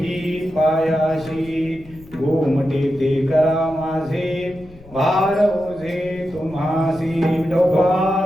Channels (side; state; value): left; noise; rumble, 21 dB below the sound